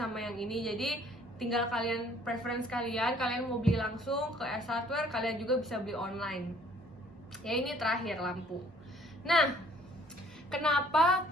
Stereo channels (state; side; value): normal; both; correlation 0.58